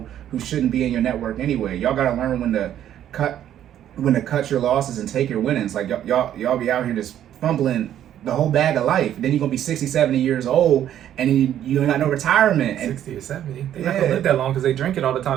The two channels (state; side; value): quieter; left; 10.9 dB